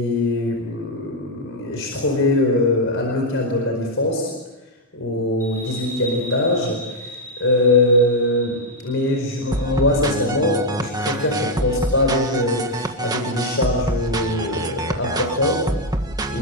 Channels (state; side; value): normal; both; correlation 0.01